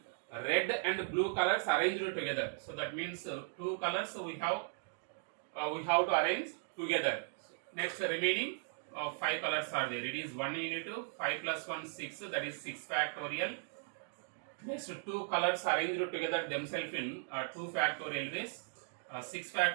red and blue colors arranged together. So that means 2 colors we have to arrange together. Next, remaining 5 colors are there. It is 1 into 5 plus 1 6. That is 6 factorial. Next, 2 colors arranged together themselves in 2 factorial ways. 6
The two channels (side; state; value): left; silent; digital silence